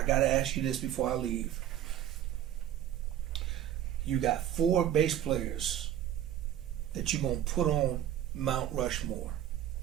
got to ask you this before I leave. You got 4 bass players that you're going to put on Mount Rushmore.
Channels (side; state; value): left; quieter; 11.1 dB